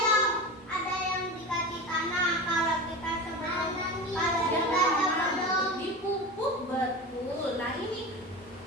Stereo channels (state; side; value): normal; both; correlation 0.28